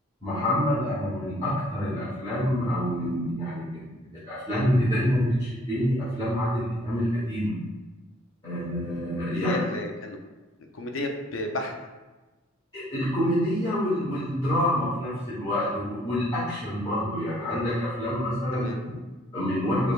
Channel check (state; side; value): normal; both; correlation 0.62